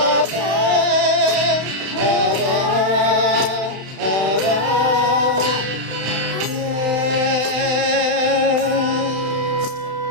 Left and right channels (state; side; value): late; left; 32 ms